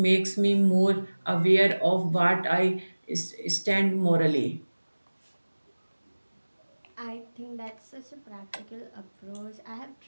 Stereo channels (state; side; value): inverted; both; correlation -1.00